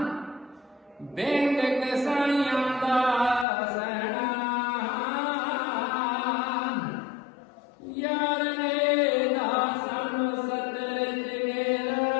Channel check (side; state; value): right; drops out; at 3.5 s